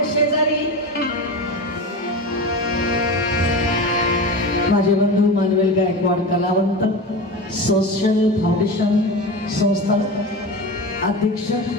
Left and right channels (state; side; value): normal; both; correlation 0.26